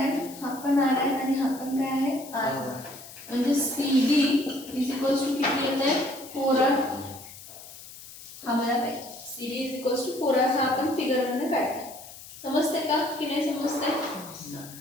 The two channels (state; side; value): noise; left; hiss, 16 dB below the sound